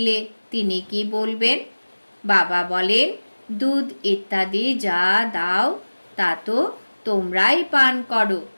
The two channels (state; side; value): inverted; both; correlation -1.00